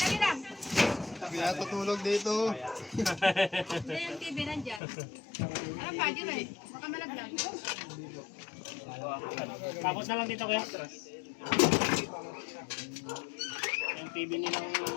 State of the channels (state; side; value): drops out; right; at 4.8 s